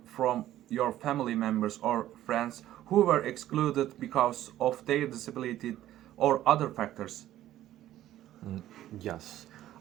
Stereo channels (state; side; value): quieter; left; 13.3 dB